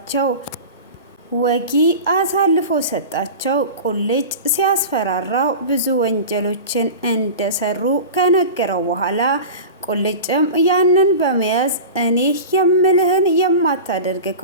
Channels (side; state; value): both; inverted; correlation -0.32